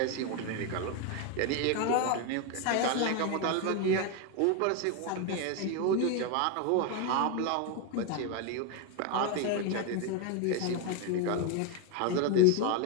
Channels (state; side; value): different; both; correlation 0.02